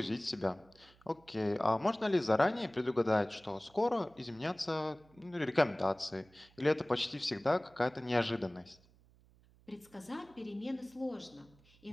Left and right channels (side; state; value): right; noise; hum, 28 dB below the sound